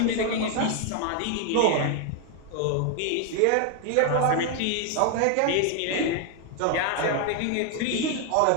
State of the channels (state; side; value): different; both; correlation 0.01